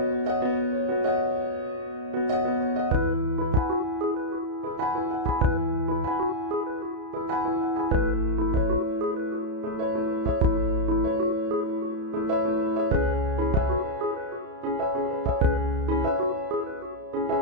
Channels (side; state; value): left; late; 31 ms